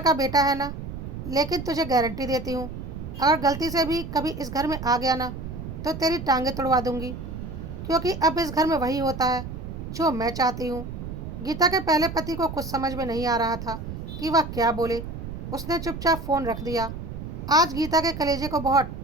बेटा है ना, लेकिन तुझे गारंटी देती हूँ, अगर गलती से भी कभी इस घर में आ गया ना, तो तेरी टांगें तुड़वा दूंगी, क्योंकि अब इस घर में वही होता है जो मैं चाहती हूँ। गीता के पहले पति को कुछ समझ में नहीं आ रहा था कि वह क्या बोले। उसने चुपचाप फ़ोन रख दिया। आज गीता के कलेजे को बहुत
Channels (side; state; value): right; noise; rumble, 8 dB below the sound